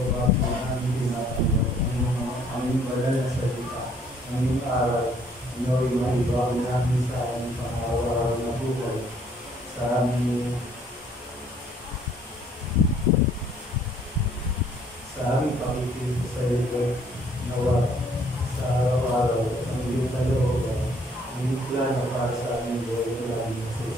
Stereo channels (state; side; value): normal; both; correlation 0.62